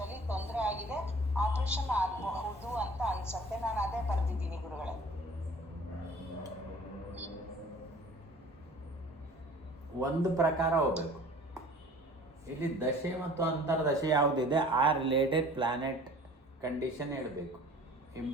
ತೊಂದರೆ ಆಗಿದೆ, ಆಪರೇಷನ್ ಆಗಬಹುದು ಅಂತ ಅನ್ಸತ್ತೆ. ನಾನು ಅದೇ ಬರ್ದಿದ್ದೀನಿ ಗುರುಗಳೇ. ಒಂದು ಪ್ರಕಾರ ಹೋಗ್ಬೇಕು. ಇಲ್ಲಿ ದಶೆ ಮತ್ತು ಅಂತರ್ದಶೆ ಯಾವುದಿದೆ ಆ ರಿಲೇಟೆಡ್ ಪ್ಲಾನೆಟ್ ಕಂಡೀಷನ್ ಹೇಳಬೇಕು.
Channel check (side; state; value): both; normal; correlation 0.47